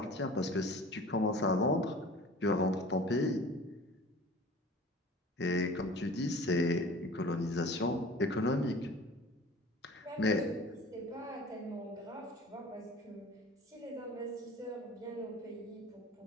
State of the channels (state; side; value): normal; both; correlation 0.42